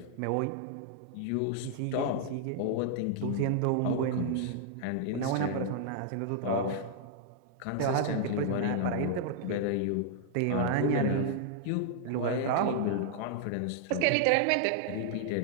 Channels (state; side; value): different; both; correlation -0.01